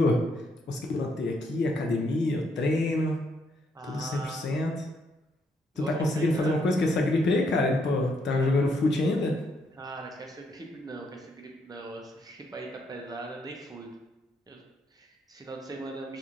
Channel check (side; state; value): both; normal; correlation 0.74